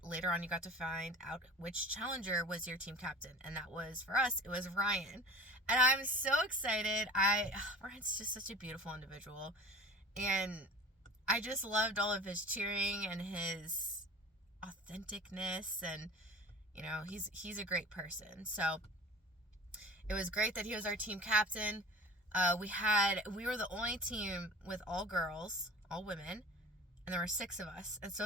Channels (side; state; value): both; normal; correlation 0.40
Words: later on you got to find out which challenger was your team captain. And that was, for us, it was Ryan. And I'm so excited. Ryan's just such a beautiful individual. And I just loved all of his cheering and his authenticness, and he's a great person. So it was great that he was our team captain. We were the only team with all girls, all women, and there were 6 of us. And